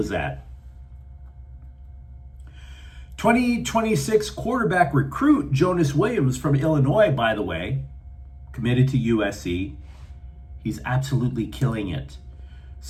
that. 2026 quarterback recruit Jonas Williams from Illinois, by the way, committed to USC. He's absolutely killing it.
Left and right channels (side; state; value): both; identical; correlation 1.00